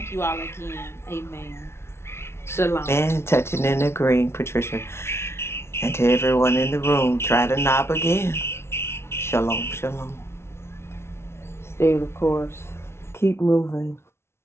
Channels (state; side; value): late; right; 0.12 ms